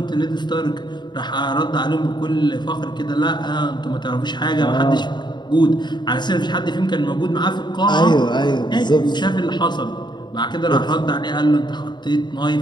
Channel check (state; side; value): late; right; 0.21 ms